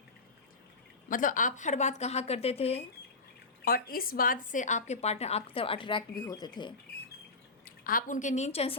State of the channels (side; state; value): right; quieter; 3.7 dB